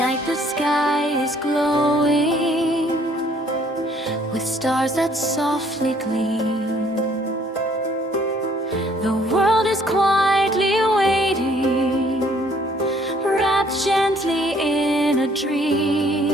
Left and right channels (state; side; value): normal; both; correlation 0.62